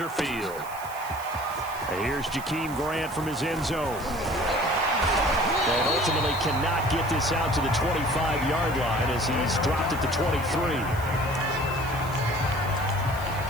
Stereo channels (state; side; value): noise; right; hiss, 17 dB below the sound